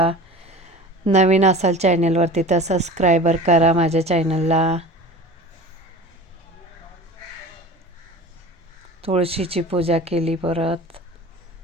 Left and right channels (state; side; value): normal; both; correlation 0.37